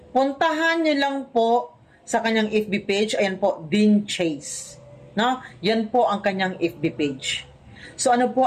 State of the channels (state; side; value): identical; both; correlation 1.00